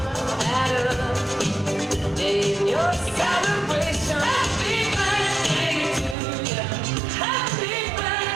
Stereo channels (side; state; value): left; drops out; at 6.2 s